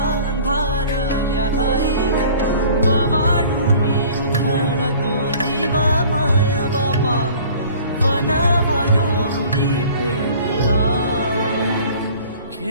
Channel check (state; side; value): inverted; both; correlation -0.48